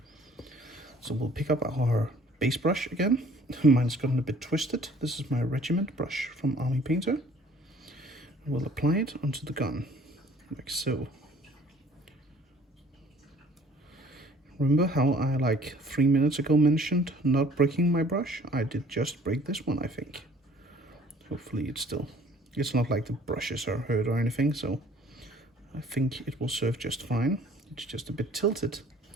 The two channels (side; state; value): both; normal; correlation 0.54